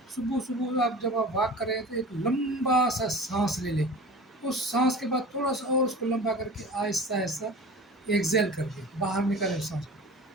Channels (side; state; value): both; normal; correlation 0.38